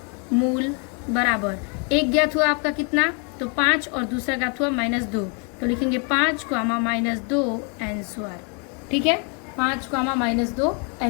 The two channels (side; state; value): right; quieter; 37.3 dB